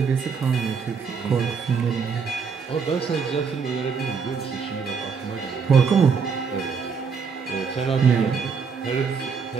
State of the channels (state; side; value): quieter; left; 5.8 dB